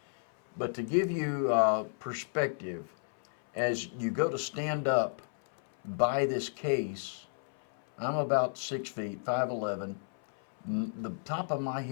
But to give you perspective, as you go to stand up by this case, I'm about 6 feet, 5'11". The top of my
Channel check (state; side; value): silent; right; 56 dB below the other